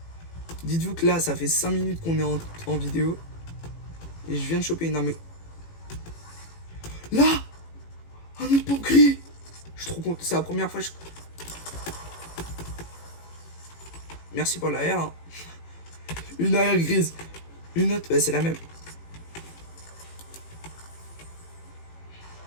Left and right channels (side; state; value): right; late; 18 ms